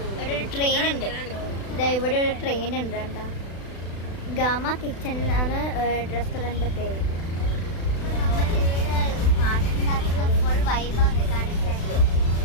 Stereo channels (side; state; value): right; late; 36 ms